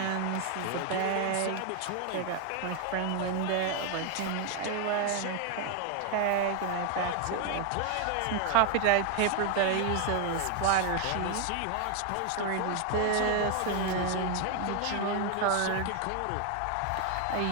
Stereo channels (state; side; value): different; both; correlation 0.00